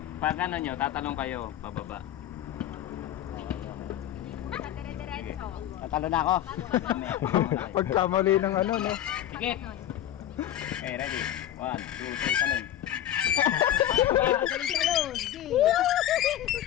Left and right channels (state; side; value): quieter; right; 12.0 dB